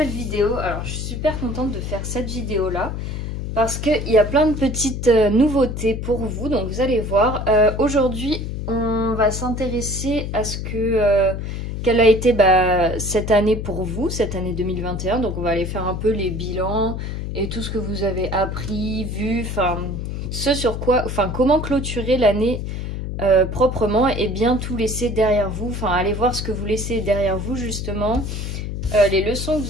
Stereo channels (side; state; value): left; noise; hum, 5 dB below the sound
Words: vidéo. Alors je suis super contente de faire cette vidéo là parce qu'il y a plein de petites nouveautés pour vous, donc vous allez voir. Aujourd'hui on va s'intéresser à ce que quelle a été cette année pour vous, cette année 2021. Donc on va aller faire un peu les bilans et tout ce que vous avez appris, vu, enfin ce sur quoi, enfin comment clôturer l'année proprement et bien tout laisser derrière vous. Enfin, allez voir ce que vous laissez derrière vous justement, les leçons que